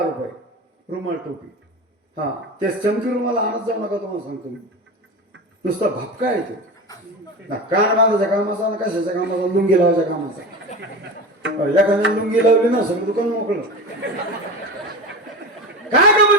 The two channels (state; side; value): normal; both; correlation 0.27